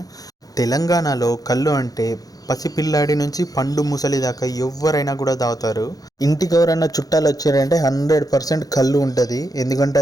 తెలంగాణలో కళ్ళు అంటే పసిపిల్లాడి నుంచి పండు ముసలి దాకా ఎవరైనా కూడా తాగుతారు. ఇంటికి ఎవరైనా చుట్టాలు వచ్చారంటే 100% కళ్ళు ఉంటుంది. ఎందుకంటే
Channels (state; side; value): late; right; 0.18 ms